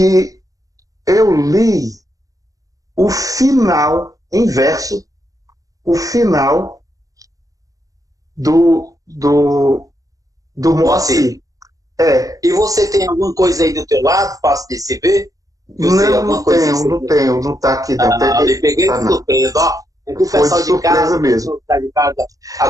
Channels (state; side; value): late; left; 0.17 ms